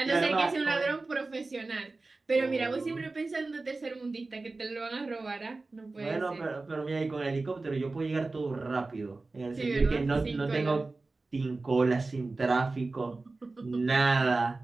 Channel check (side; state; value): left; quieter; 3.5 dB